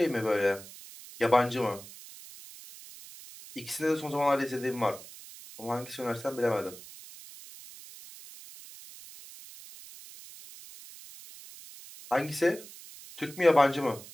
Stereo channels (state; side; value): noise; right; hiss, 17 dB below the sound